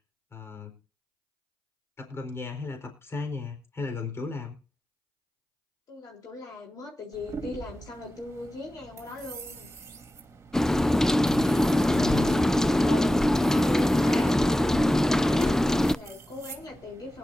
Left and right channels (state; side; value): normal; both; correlation 0.94